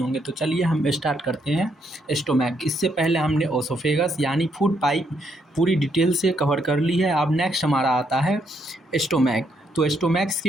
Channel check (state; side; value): normal; both; correlation 0.75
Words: तो चलिए हम स्टार्ट करते हैं। स्टोमैक, इससे पहले हमने ओसोफेगस यानी फूड पाइप पूरी डिटेल से कवर कर ली है। अब नेक्स्ट हमारा आता है स्टोमैक। तो स्टोमैक्स